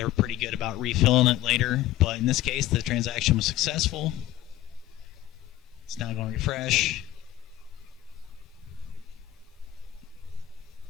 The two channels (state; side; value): quieter; right; 14.3 dB